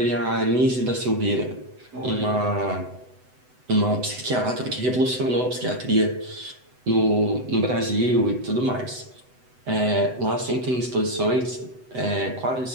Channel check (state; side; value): late; left; 7.9 ms